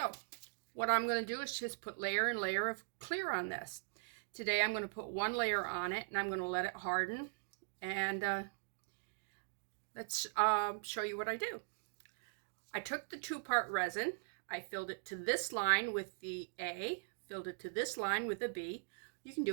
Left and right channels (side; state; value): left; silent; digital silence